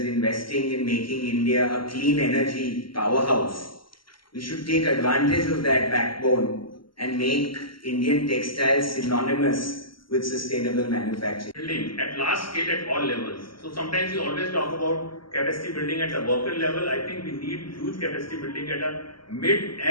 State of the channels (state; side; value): late; right; 0.74 ms